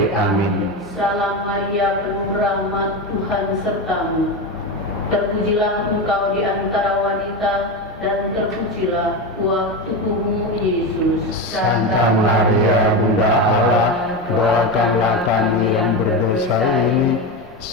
Amin. Salam Maria, penuh rahmat, Tuhan sertamu. Terpujilah engkau di antara wanita, dan terpujilah terpujilah buah tubuhmu Yesus. Santa Maria Bunda Allah, doakanlah kami yang berdosa ini,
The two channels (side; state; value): both; normal; correlation 0.17